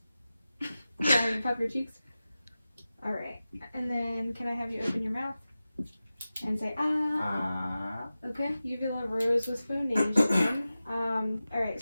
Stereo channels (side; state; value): both; inverted; correlation -0.95